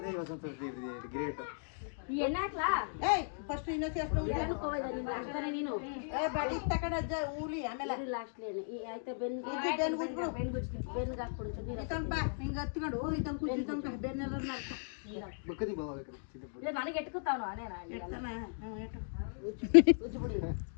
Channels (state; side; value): silent; right; digital silence